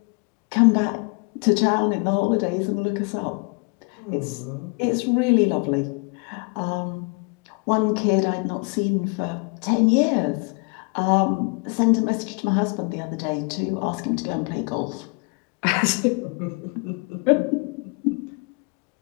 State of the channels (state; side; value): quieter; right; 33.7 dB